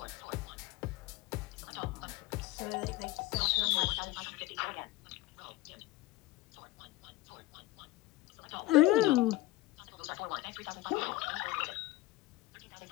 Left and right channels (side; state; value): right; quieter; 18.4 dB